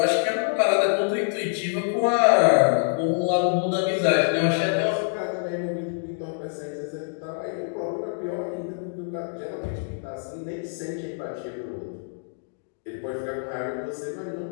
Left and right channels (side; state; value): right; silent; digital silence